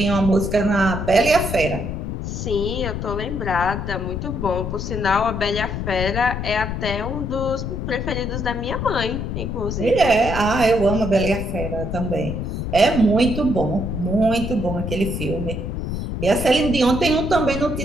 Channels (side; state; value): left; noise; rumble, 4 dB below the sound